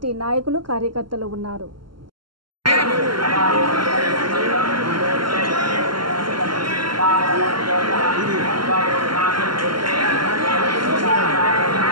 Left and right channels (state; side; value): late; left; 0.72 ms